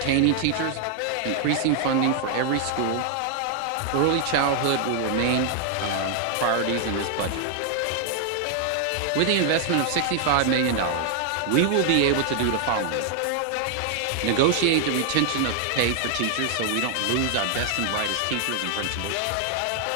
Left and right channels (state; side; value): different; both; correlation 0.00